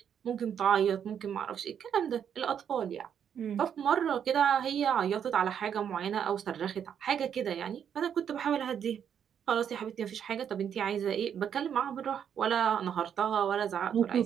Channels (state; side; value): quieter; left; 8.4 dB